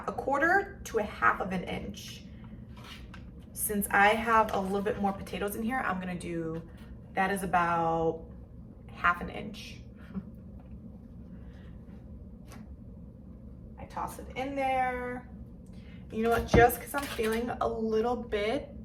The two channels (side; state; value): both; identical; correlation 1.00